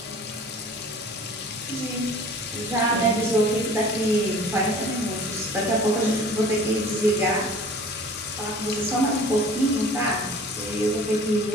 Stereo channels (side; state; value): both; normal; correlation 0.46